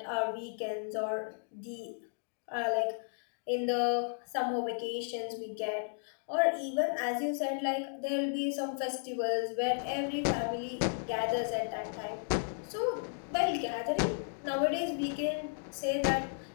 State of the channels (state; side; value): silent; right; digital silence